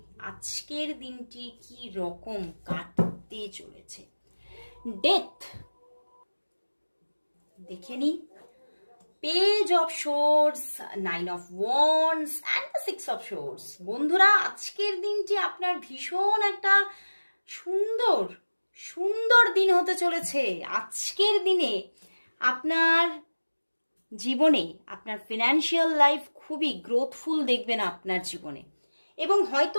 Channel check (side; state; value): both; inverted; correlation -1.00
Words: আজকের দিনটি কি রকম কাটতে চলেছে। ডেথ দেখে নিই। Page of swords, 9 of wands and the 6 of swords. বন্ধুরা আজকের দিনটি আপনার ভীষণ একটা সুন্দর সুন্দর দিন হতে চলেছে। আজকের দিনে আপনার জীবনে আপনার ফিনান্সিয়াল লাইফ খুবই গ্রোথফুল দেখবেন আপনার জীবনে, এবং